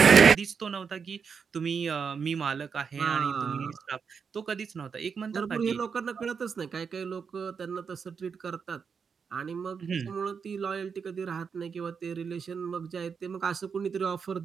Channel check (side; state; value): left; quieter; 6.1 dB